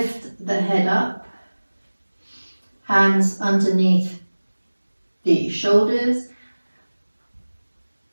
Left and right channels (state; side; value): inverted; both; correlation -1.00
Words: the head up, hands underneath the shoulders,